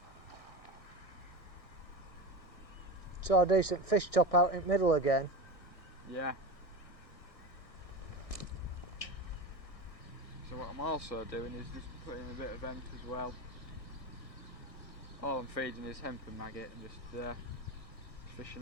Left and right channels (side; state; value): right; late; 1.6 ms